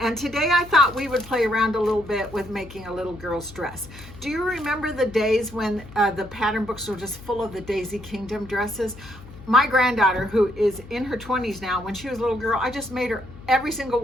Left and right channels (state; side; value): noise; left; hum, 18 dB below the sound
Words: And today I thought we would play around a little bit with making a little girl's dress. Do you remember the days when the pattern books were just full of the Daisy Kingdom dresses? My granddaughter, who is in her 20s now, when she was a little girl, I just made her every single